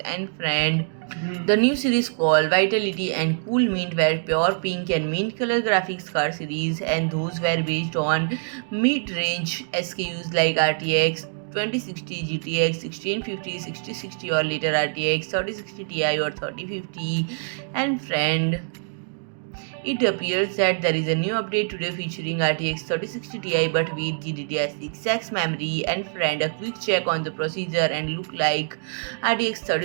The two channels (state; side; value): silent; left; digital silence